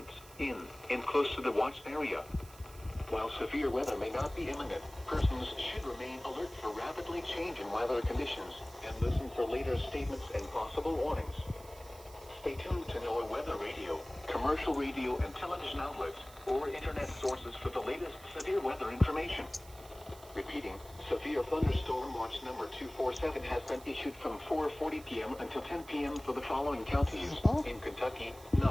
in and close to the watched area. While severe weather may not be imminent, persons should remain alert for rapidly changing weather conditions and listen for later statements and possible warnings. Stay tuned to NOAA weather radio, commercial radio and television outlets, or internet sources for the latest severe weather information. Repeating, severe thunderstorm watch number 247 has been issued from 4:40 p.m. until 10 p.m. for the following counties in Kentucky:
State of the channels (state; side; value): noise; right; hiss, 20 dB below the sound